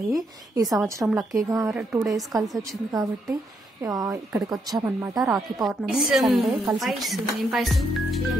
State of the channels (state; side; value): normal; both; correlation 0.76